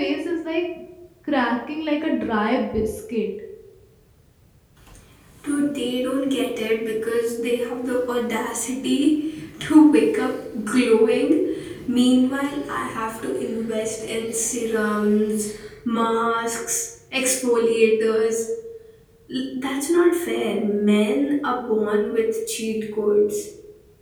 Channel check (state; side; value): identical; both; correlation 1.00